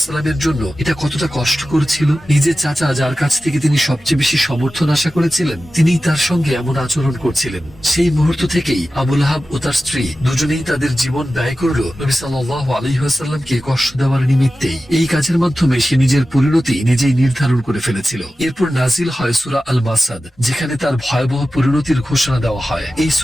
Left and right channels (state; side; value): normal; both; correlation 0.94